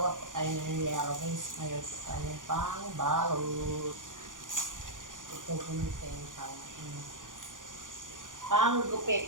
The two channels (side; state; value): left; late; 0.88 ms